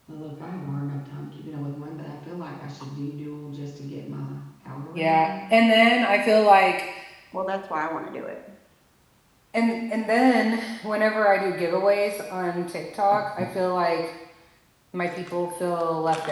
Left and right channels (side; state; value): both; identical; correlation 1.00